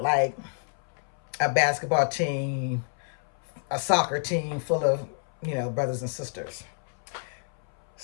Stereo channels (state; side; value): silent; right; 59 dB below the other